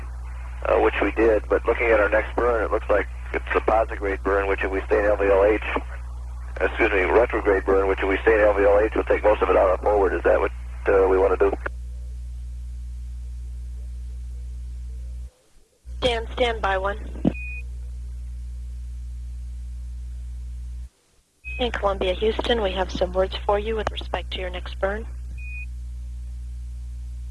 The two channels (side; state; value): both; identical; correlation 1.00